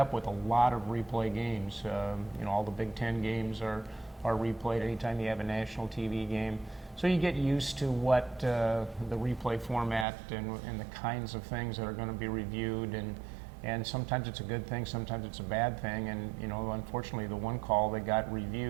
with a lot of replay games. All the Big Ten games are replayed anytime you have a national TV game. So you get used to what the replay format and the kinds of things that are going to be reviewed, and sometimes it's a good thing, sometimes it's a bad thing. And unfortunately, the one call that got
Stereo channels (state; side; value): drops out; left; at 10.1 s